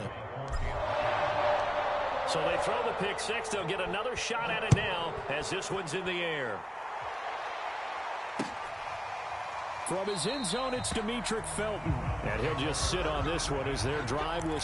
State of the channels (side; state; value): both; identical; correlation 1.00